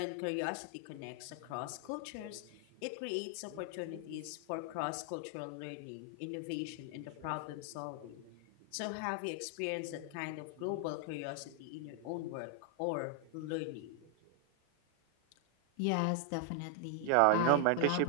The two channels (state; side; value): different; both; correlation 0.00